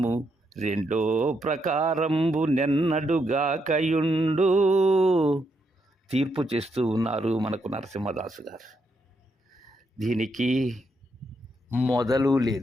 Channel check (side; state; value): both; normal; correlation 0.79